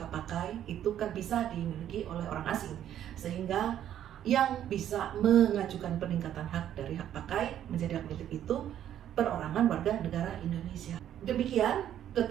hak pakai itu kan bisa dimiliki oleh orang asing, sehingga yang bisa mengajukan peningkatan hak dari hak pakai menjadi hak milik itu perorangan warga negara Indonesia. Demikian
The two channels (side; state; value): left; quieter; 10.8 dB